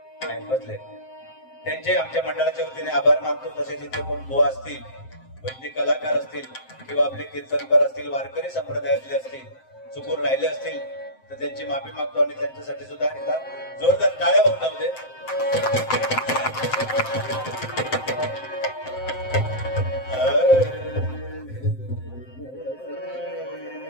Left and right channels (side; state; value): right; late; 7.7 ms